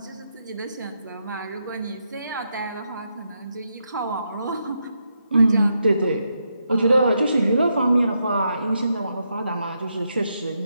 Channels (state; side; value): inverted; both; correlation -0.82